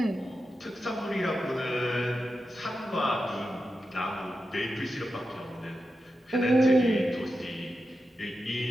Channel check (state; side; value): normal; both; correlation 0.90